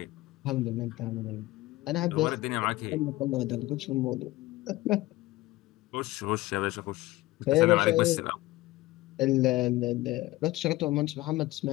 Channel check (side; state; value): right; quieter; 18.5 dB